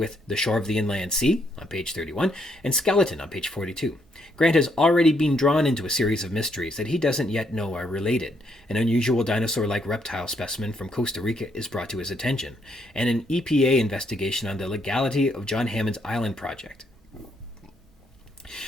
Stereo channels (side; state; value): both; normal; correlation 0.74